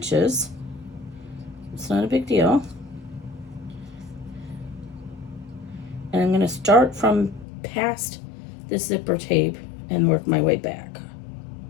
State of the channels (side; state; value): right; drops out; at 7.5 s